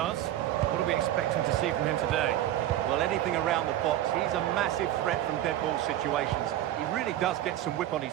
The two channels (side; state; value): left; quieter; 13.0 dB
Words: What are we expecting to see from him today? Well, anything around the box. He's a massive threat from dead ball situations. He really does get some whip on